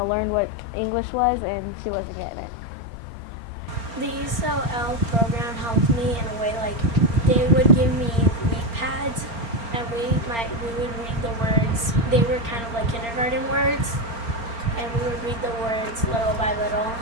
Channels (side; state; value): left; late; 4.3 ms